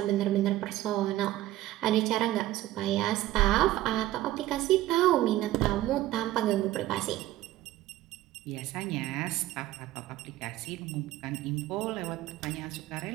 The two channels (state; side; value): quieter; left; 15.5 dB